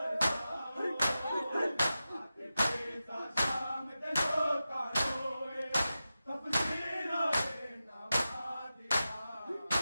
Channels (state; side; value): inverted; both; correlation -0.92